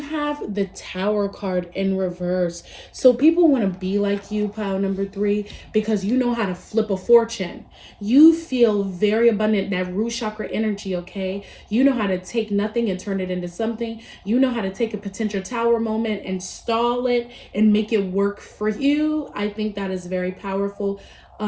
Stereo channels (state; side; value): identical; both; correlation 1.00